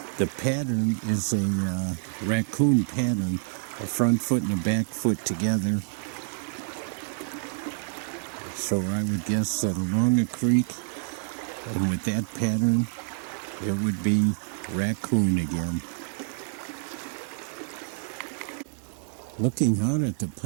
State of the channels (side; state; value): left; silent; digital silence